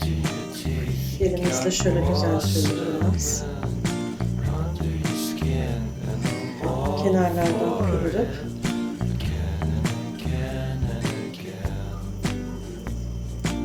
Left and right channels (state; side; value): identical; both; correlation 1.00